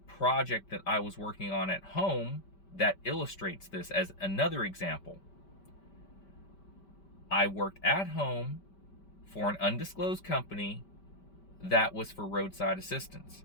project that I was working on at home that illustrates this as another example. I worked at home for an undisclosed company that was for roadside assistance.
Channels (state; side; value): late; right; 5.2 ms